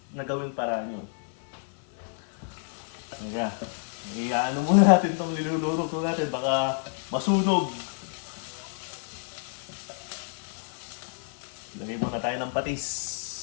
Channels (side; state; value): right; silent; digital silence